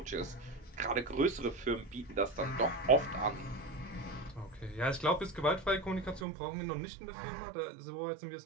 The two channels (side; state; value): left; drops out; at 6.2 s